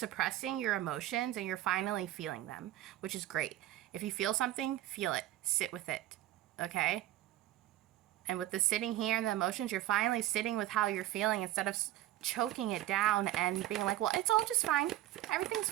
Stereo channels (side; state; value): left; quieter; 14.3 dB